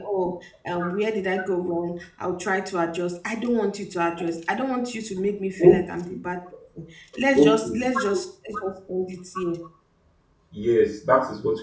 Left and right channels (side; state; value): both; identical; correlation 1.00